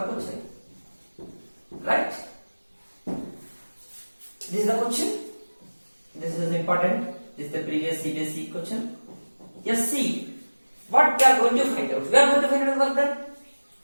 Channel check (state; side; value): inverted; both; correlation -1.00